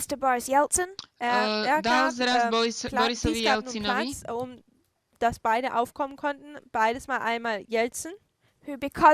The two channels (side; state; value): both; identical; correlation 1.00